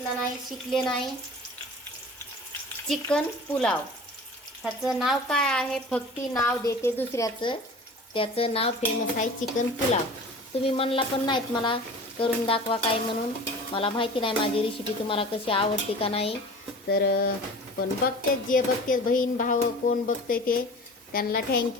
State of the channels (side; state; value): both; normal; correlation 0.39